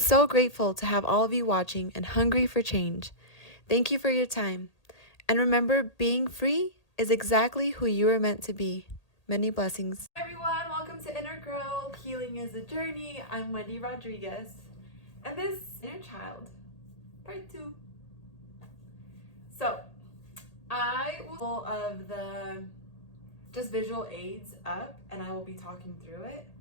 so grateful to have all of you watching and hungry for change. Thank you for your time. And remember, being free is exactly who you are meant to be. Many blessings. Hi everyone, welcome to Inner Growth. Healing is a journey. I'm Wendy Rodriguez. And this is Inner Child, part 2. So, I will pull of the just visual aids up and I will be talking through it.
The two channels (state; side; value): late; right; 1.8 ms